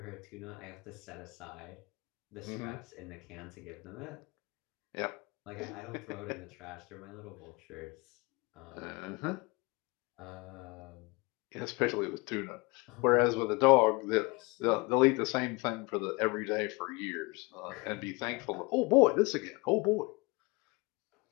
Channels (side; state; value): right; quieter; 26.2 dB